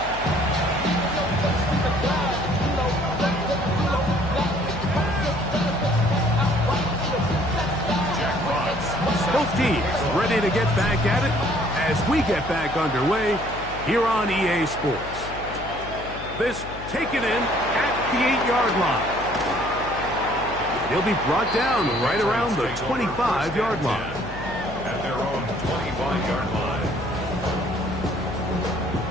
Both teams ready to get back at it as we get back underway here on EA Sports. This taken in at the 8-yard line. He'll be brought down right around the 25-yard line. At their own 25-yard line.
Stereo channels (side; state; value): left; noise; hum, 13 dB below the sound